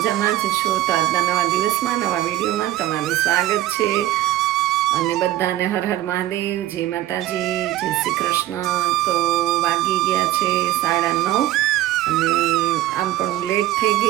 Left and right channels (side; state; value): left; quieter; 14.4 dB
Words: જ છો. તો આજના નવા દિવસમાં નવા વિડીયોમાં તમારું સ્વાગત છે. અને બધાને હર હર મહાદેવ, જય માતાજી, જય શ્રી કૃષ્ણ. તો વાગી ગયા છે 9:30 અને આમ પણ હું લેટ થઈ